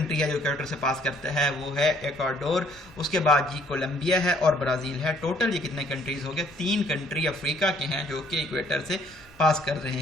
है जो इक्वेटर से पास करता है वो है इक्वाडोर, उसके बाद जी कोलंबिया है और ब्राज़ील है। टोटल ये कितने कंट्रीज़ हो गए, 3 कंट्री अफ्रीका के हैं जो कि इक्वेटर से पास कर रहे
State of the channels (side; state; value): both; normal; correlation 0.62